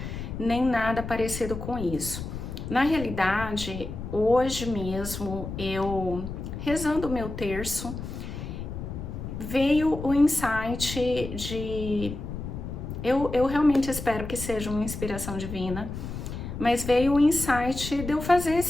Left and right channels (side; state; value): left; noise; rumble, 7 dB below the sound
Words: nem nada parecido com isso. Na realidade, hoje mesmo, eu rezando o meu terço, veio o insight de... Eu realmente espero que seja uma inspiração divina, mas veio o insight de eu fazer